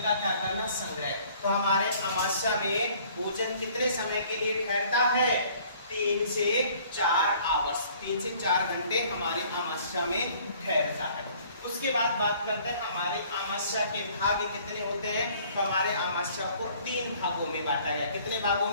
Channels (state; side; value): inverted; both; correlation -0.56